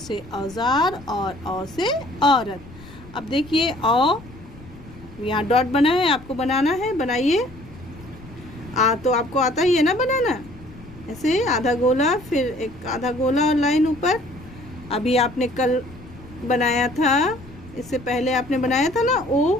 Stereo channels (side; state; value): left; noise; rumble, 19 dB below the sound